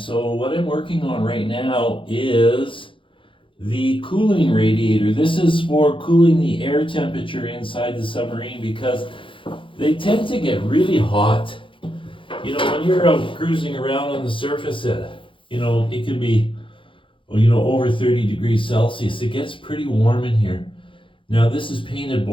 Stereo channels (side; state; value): right; late; 0.25 ms